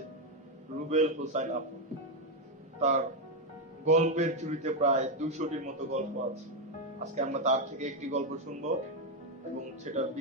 রুবেল হোসাইন আপু। তার গল্পের ঝুড়িতে প্রায় 200টির মতো গল্প আছে। আজকে আমরা তার থেকে একটি গল্প শুনবো এবং সেটা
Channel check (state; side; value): normal; both; correlation 0.05